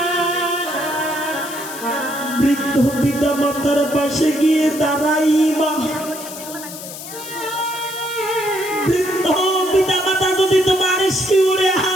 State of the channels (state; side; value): noise; left; hiss, 12 dB below the sound